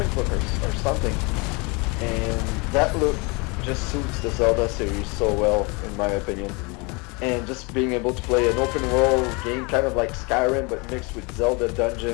book or something. And that look just suits the Zelda series so well, in my opinion. And just being able to play an open world game, kind of like Skyrim, but mixed with Zelda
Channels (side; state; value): right; quieter; 28.9 dB